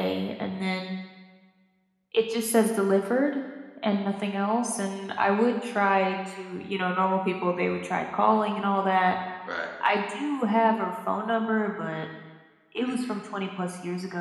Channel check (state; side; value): identical; both; correlation 1.00